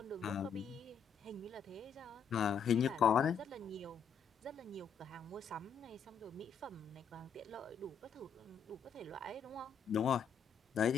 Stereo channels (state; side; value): quieter; right; 6.5 dB